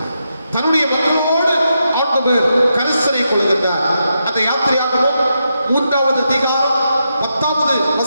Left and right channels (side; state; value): both; inverted; correlation -0.84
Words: தன்னுடைய மக்களோடு ஆண்டவர் கரிசனை கொள்கின்றார். அந்த யாத்திரையாகவும் 3வது அதிகாரம் 10வது